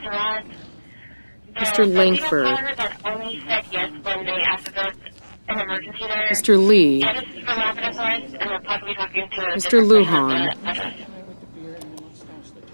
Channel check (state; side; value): inverted; both; correlation -1.00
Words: The legal caller that only said yes when they asked if there was an emergency there. Mr. Lee. Yeah, this is from Rapid SOS, and we're possibly talking to a Mr. different person at Lujan. the address.